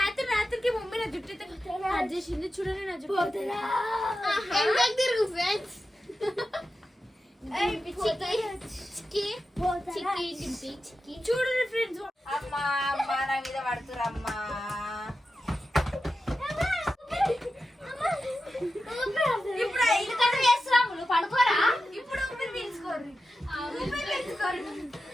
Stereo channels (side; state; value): both; normal; correlation 0.92